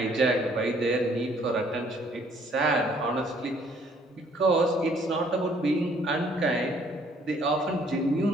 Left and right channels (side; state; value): both; normal; correlation 0.62